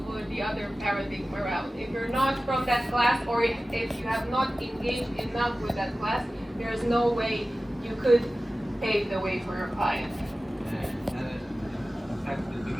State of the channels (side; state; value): both; normal; correlation 0.96